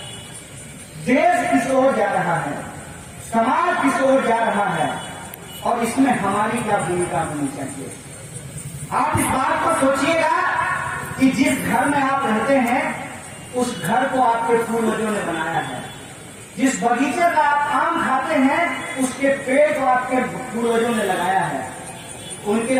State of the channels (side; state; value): both; identical; correlation 1.00